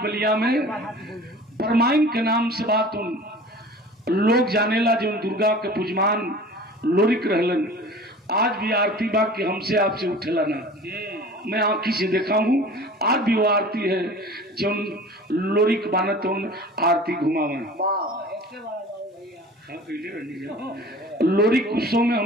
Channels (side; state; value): both; normal; correlation 0.42